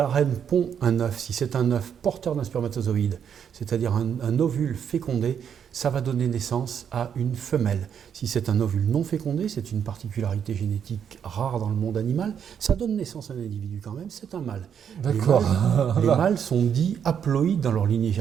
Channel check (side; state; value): left; quieter; 8.1 dB